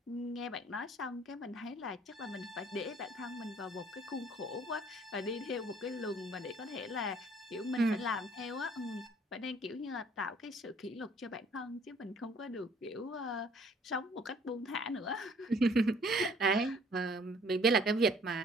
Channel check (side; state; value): both; normal; correlation 0.58